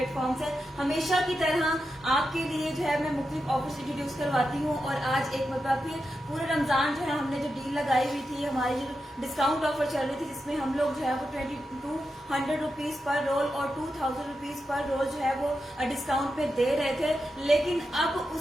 से। हमेशा की तरह आपके लिए जो है मैं मुख्तलिफ ऑफर्स इंट्रोड्यूस करवाती हूँ और आज एक मरतबा फिर पूरे रमजान जो है हमने जो डील लगाई हुई थी, हमारी जो डिस्काउंट ऑफर चल रही थी, जिसमें हम लोग जो है वो 2200 रुपीज पर रोल और 2000 रुपीज पर रोल जो है वो डिस्काउंट पे दे रहे थे। लेकिन अब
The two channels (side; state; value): both; normal; correlation 0.88